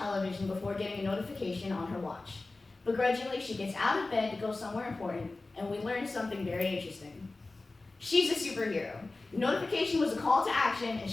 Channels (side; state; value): right; quieter; 3.3 dB